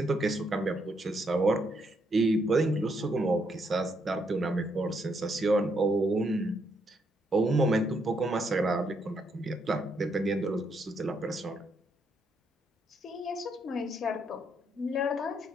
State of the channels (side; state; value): both; normal; correlation 0.75